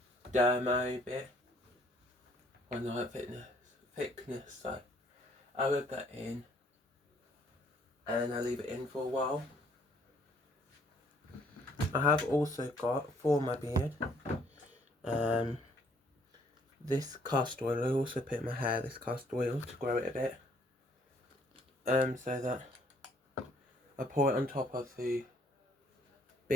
dermo bit. Weren't the right thickness, so I rub that in and I leave it in for a while. I have also got, for my beard, this castor oil. I also put in my hair this castor oil to grow it a bit. So that I pour it on top of the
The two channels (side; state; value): both; normal; correlation 0.64